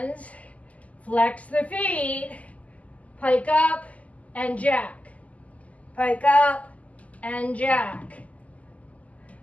flex the feet, pike up and jack. Pike up and jack.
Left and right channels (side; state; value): right; late; 0.072 ms